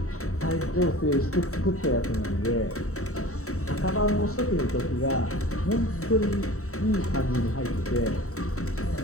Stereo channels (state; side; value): late; right; 0.64 ms